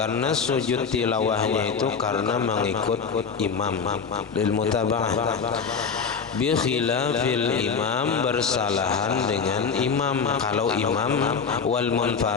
sujud tilawahnya itu karena mengikut imam, lil mutaba'ah. Bi khilafil imam, bersalahan dengan imam. Kalau imam wal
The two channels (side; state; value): right; quieter; 5.8 dB